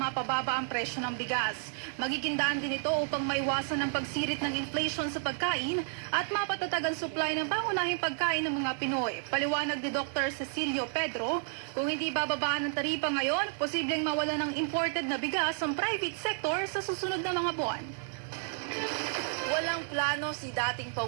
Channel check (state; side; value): silent; left; digital silence